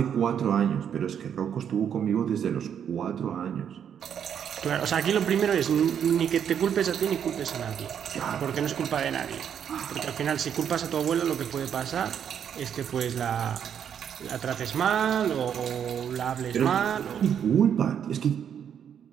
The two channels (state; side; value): quieter; left; 8.5 dB